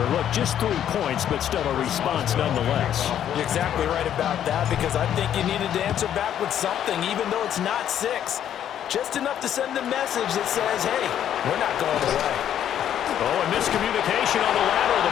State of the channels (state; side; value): quieter; right; 10.2 dB